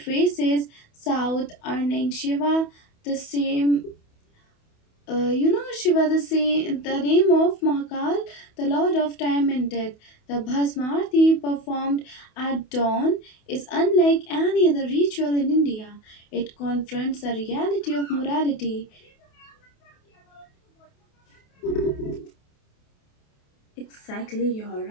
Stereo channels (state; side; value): late; right; 28 ms